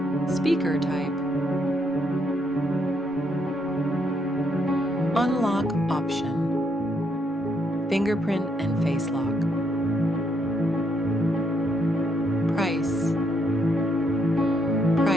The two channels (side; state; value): both; normal; correlation 0.74